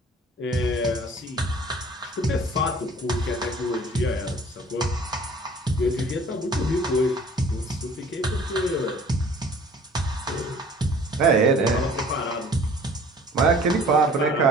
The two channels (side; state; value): both; normal; correlation 0.51